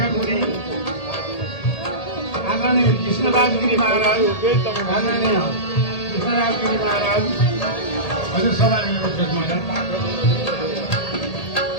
आदरणीय कृष्णराज गिरी महाराज, आदरणीय कृष्णराज गिरी महाराज, हजुर सवारी महाराज,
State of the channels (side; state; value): right; late; 1.8 ms